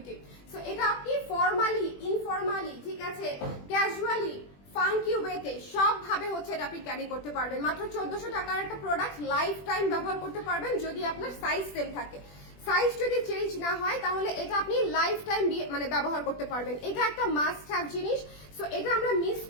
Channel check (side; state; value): right; late; 21 ms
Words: সো এটা আপনি ফর্মালি, ইনফর্মালি, ঠিক আছে, ক্যাজুয়ালি, ফাঙ্কি ওয়েতে সব ভাবে হচ্ছে এটা আপনি ক্যারি করতে পারবেন। মাত্র 1400 টাকার একটা প্রোডাক্ট লাইফ টাইম ব্যবহার করতে পারবেন যদি আপনার সাইজ সেম থাকে। সাইজ যদি চেঞ্জ না হয় তাহলে এটা আপনি লাইফ টাইম মানে ব্যবহার করতে পারবেন। এটা একটা মাস্ট হ্যাভ জিনিস, সো এটা আমরা মিস